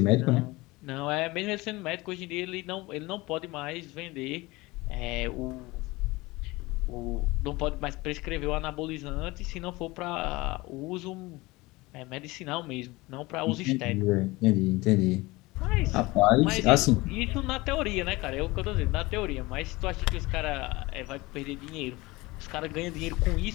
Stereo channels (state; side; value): quieter; right; 21.8 dB